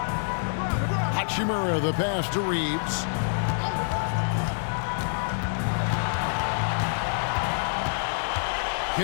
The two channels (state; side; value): silent; right; 58 dB below the other